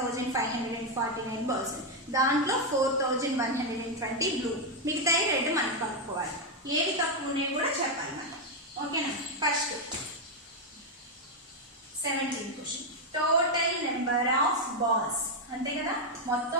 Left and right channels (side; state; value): both; normal; correlation 0.02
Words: బాల్స్, దాంట్లో 4,120 బ్లూ, మిగతా రెడ్ మనం కనుక్కోవాలి. ఏవి తక్కువ ఉన్నాయి కూడా చెప్పాలి మనం. ఓకేనా? First 17th question, total number of balls, అంతే కదా,